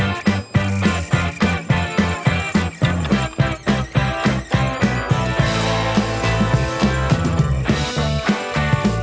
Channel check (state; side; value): identical; both; correlation 1.00